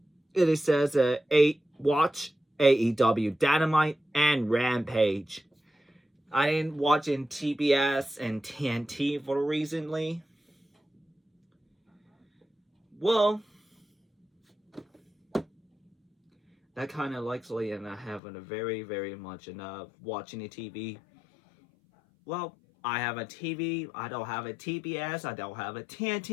it says watch AEW Dynamite and Rampage. I didn't watch in TBS and TNT for recently. Well, that kind of likely, and I haven't a very much enough watching the TV. Well, I have a TV. I don't have a TBS. I don't have a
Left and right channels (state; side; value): drops out; right; at 18.2 s